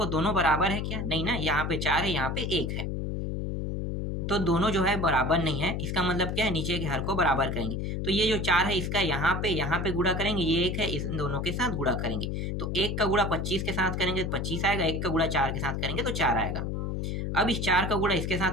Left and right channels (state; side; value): noise; left; hum, 2 dB below the sound